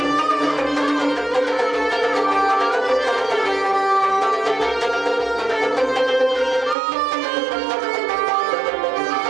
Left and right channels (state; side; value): drops out; left; at 6.8 s